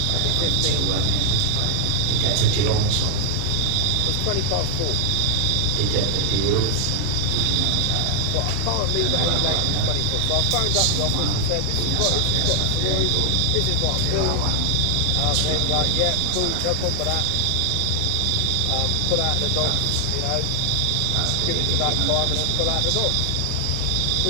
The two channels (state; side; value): different; both; correlation 0.00